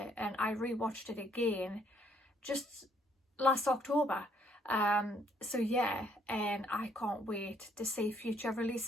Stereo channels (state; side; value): normal; both; correlation 0.67